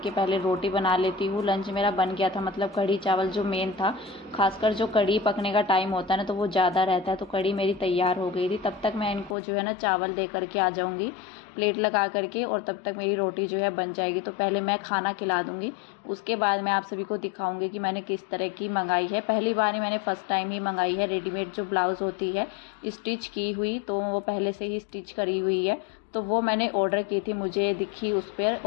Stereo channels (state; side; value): drops out; right; at 9.3 s